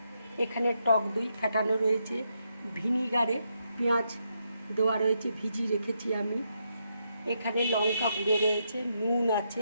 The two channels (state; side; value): inverted; both; correlation -0.80